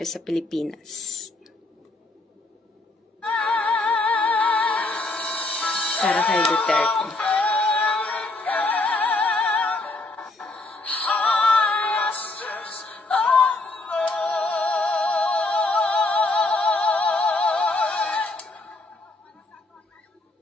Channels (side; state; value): right; quieter; 3.1 dB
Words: sa Pilipinas. Para kay Duterte.